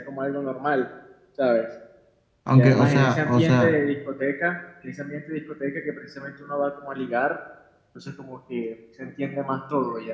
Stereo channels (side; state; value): both; identical; correlation 1.00